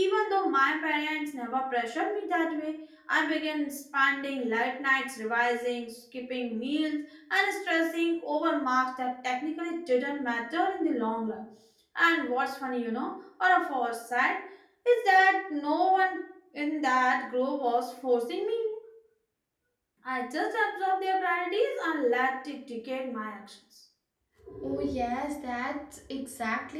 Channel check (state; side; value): identical; both; correlation 1.00